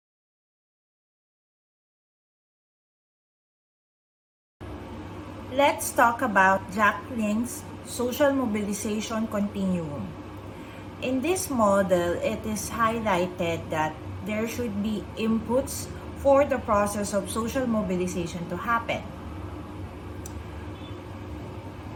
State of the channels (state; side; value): identical; both; correlation 1.00